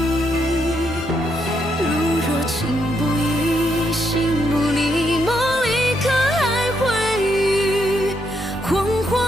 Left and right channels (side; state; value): both; normal; correlation 0.78